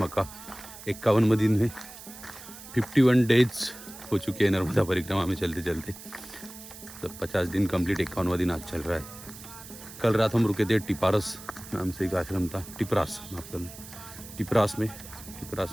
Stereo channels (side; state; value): right; noise; hiss, 15 dB below the sound